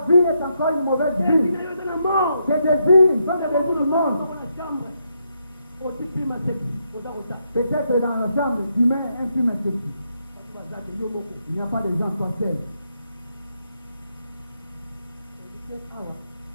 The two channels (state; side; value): inverted; both; correlation -0.79